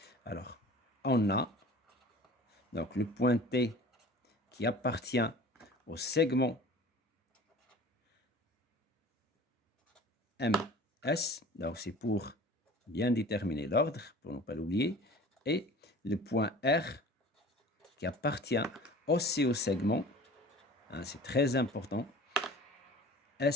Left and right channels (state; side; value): normal; both; correlation 0.43